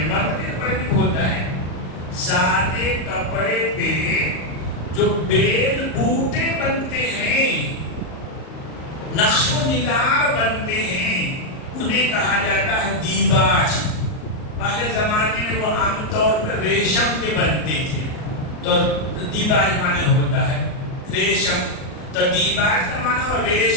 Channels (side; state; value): right; late; 38 ms